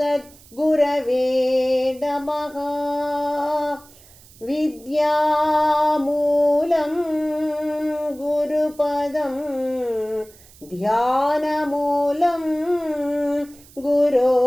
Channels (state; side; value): noise; right; hiss, 24 dB below the sound